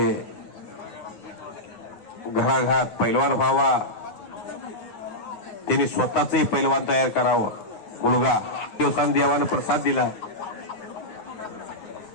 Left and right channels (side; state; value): right; late; 9.3 ms